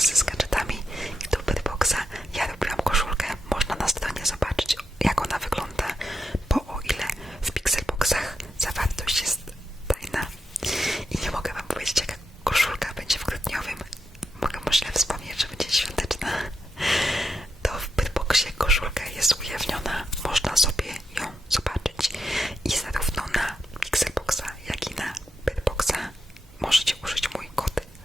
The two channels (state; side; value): normal; both; correlation 0.85